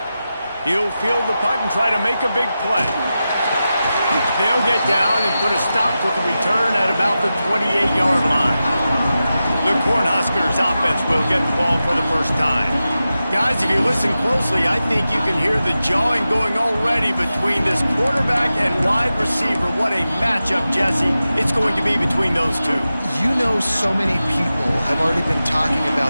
He'll field the punt and try to make a big play. They'll get down and put a stop to the return at about the 28-yard line. The Cornhuskers offense will get the ball for the first time. Guys, if you listen closely, I think you can hear the jawing going already between this quarterback and wide receiver. What a matchup, Jesse, it's going to be between those two. You know, so many people have already been talking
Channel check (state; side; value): inverted; both; correlation -0.92